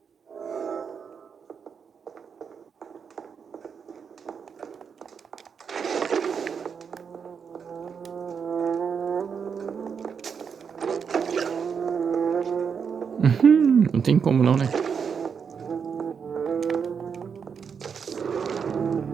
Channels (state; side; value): quieter; left; 6.5 dB